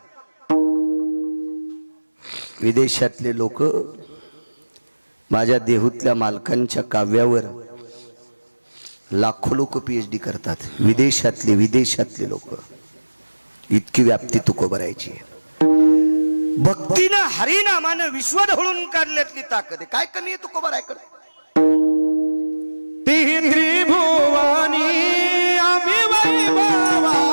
विदेशातले लोक माझ्या देहूतल्या मालकांच्या काव्यावर लाखो लोक PhD करतात. विदेशातले लोक. इतकी व्याप्ती तुकोबारायची आहे. भक्तीनं हरिनामानं विश्व ढवळून काढल्यातली ताकद आहे. काय कमी आहे तुकोबारायकडे. त्रिभुवानी आम्ही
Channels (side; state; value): both; inverted; correlation -1.00